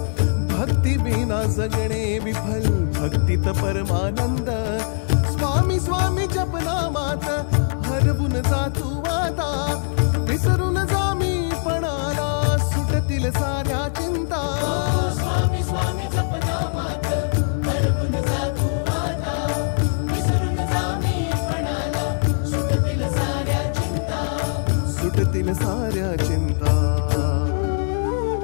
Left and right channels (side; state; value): right; silent; digital silence